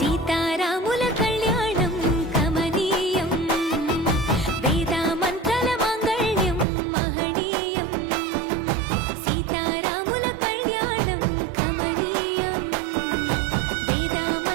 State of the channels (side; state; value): left; drops out; at 6.7 s